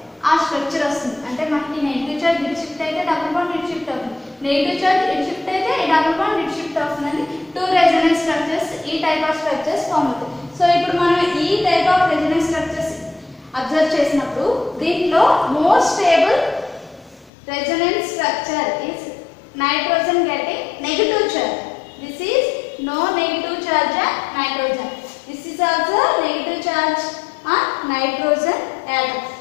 ఆ స్ట్రక్చర్ వస్తుంది. అంటే మనకి నెగిటివ్ చార్జ్ ఇటు షిఫ్ట్ అయితే డబుల్ బాండ్ ఇటు షిఫ్ట్ అవుతుంది, నెగిటివ్ చార్జ్ ఇటు షిఫ్ట్ అయితే ఈ డబుల్ బాండ్ ఇటు షిఫ్ట్ అవుతుందండి. టూ రెజొనెన్స్ స్ట్రక్చర్స్ ఈ టైప్ ఆఫ్ స్ట్రక్చర్స్ ఫామ్ అవుతాయి. సో ఇప్పుడు మనం ఈ type of resonance structures observe చేసినప్పుడు దీంట్లో more stable resonance structure is nitrogen getting negative charge. This is no negative charge on nitrogen. This is also negative charge on nitrogen atom.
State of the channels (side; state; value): right; drops out; at 17.3 s